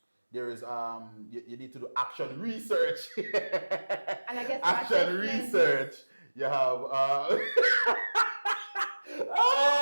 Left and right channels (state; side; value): inverted; both; correlation -1.00